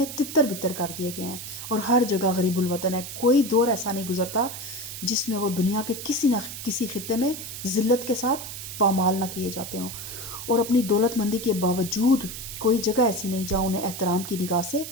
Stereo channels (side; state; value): right; noise; hiss, 9 dB below the sound